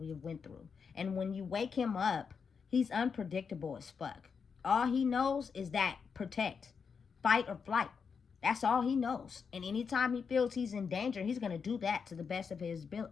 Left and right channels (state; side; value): quieter; right; 6.0 dB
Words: went through. And when you wake him up, he's unpredictable as fuck. All he knows is that protect, fight or flight. That's all he knows. And anytime he feels he's in danger, he's going to do that to the best of his